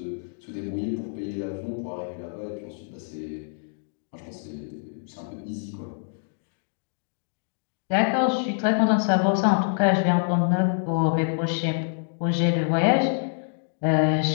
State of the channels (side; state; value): right; silent; digital silence